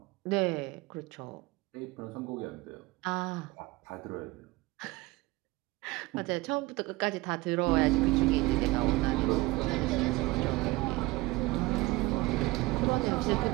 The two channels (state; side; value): quieter; left; 21.5 dB